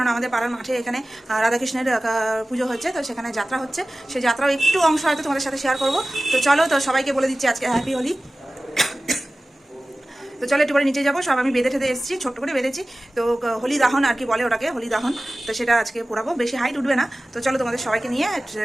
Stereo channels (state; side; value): normal; both; correlation 0.97